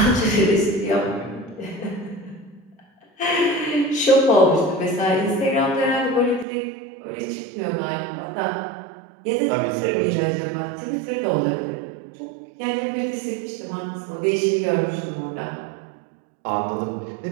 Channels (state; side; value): drops out; left; at 6.5 s